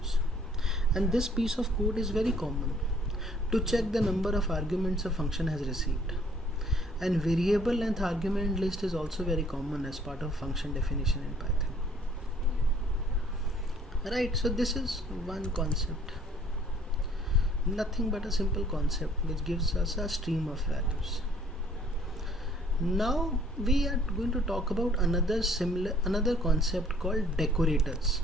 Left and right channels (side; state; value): both; normal; correlation 0.59